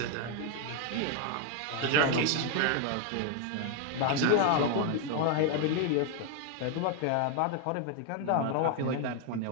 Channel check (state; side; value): different; both; correlation 0.00